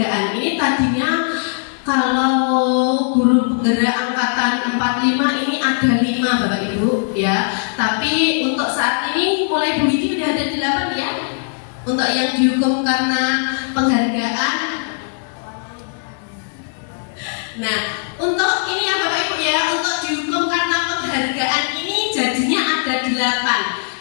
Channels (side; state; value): right; silent; digital silence